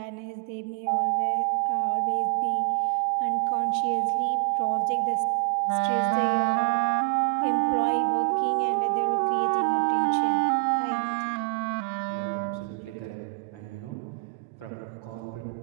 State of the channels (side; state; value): left; quieter; 35.1 dB